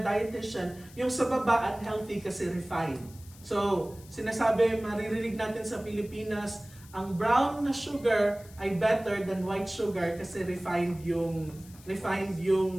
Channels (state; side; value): noise; left; hiss, 22 dB below the sound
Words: yung sa baba unhealthy kasi refined. So, sinasabi, maririnig natin sa Pilipinas, ang brown na sugar ay better than white sugar kasi refined yung